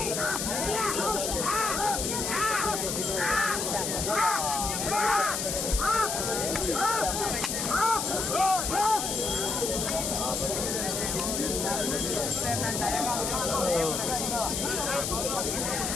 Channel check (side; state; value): left; noise; hiss, 1 dB below the sound